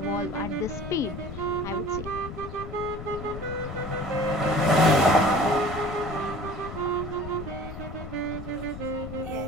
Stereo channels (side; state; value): left; noise; rumble, 10 dB below the sound